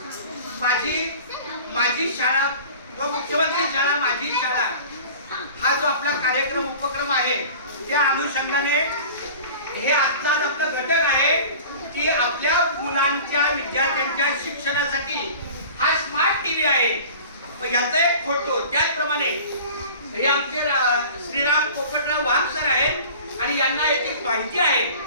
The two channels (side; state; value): both; inverted; correlation -0.41